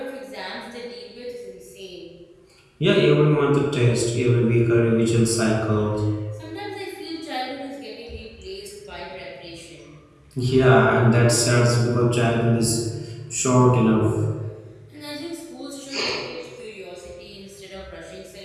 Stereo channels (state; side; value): identical; both; correlation 1.00